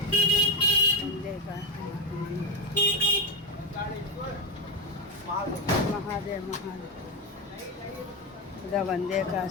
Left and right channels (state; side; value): normal; both; correlation 0.10